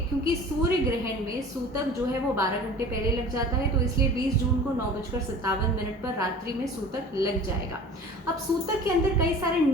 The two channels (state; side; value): normal; both; correlation 0.42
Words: क्योंकि सूर्य ग्रहण में सूतक जो है वो 12 घंटे पहले लग जाता है, तो इसलिए 20 जून को 9:57 पर रात्रि में सूतक लग जाएगा। अब सूतक के अंदर कई सारे